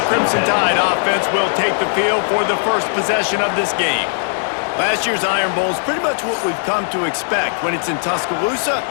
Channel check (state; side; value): silent; right; digital silence